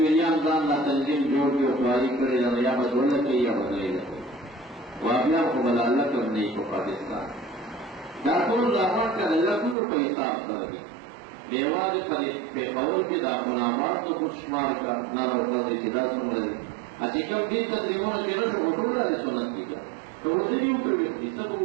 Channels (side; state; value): left; drops out; at 9.8 s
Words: دان دا تنظیم جوڑ کی اخواری کرے دا یا بدولہ کی یا بدلی لکے وابیان کو بلالہ کرنے کو پاکستان دا طول راون کا لکلو پہ حساب کرگی دیوار پر قول کی دا منامات تو کچھ شمار کا نہ روکا دی جدا سن رہی اچھی کم دین تقریبون کے نوٹ اٹھول رہا ہے سنت کی کیا تو وہ بھی اوپر بھی سب